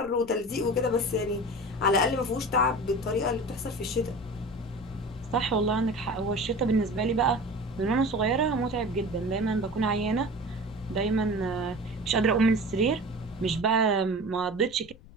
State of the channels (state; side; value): noise; left; rumble, 21 dB below the sound